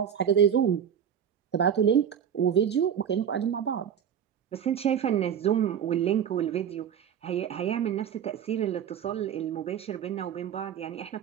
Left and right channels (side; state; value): left; quieter; 8.6 dB